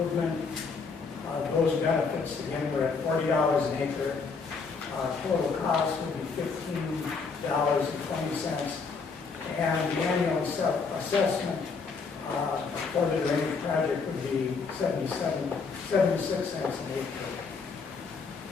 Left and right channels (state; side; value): quieter; right; 4.9 dB